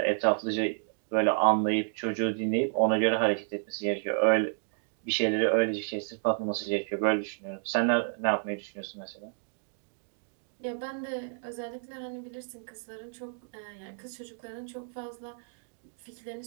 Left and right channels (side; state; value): left; silent; digital silence